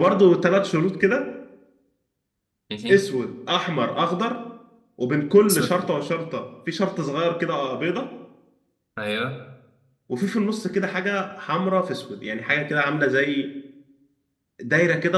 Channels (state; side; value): identical; both; correlation 1.00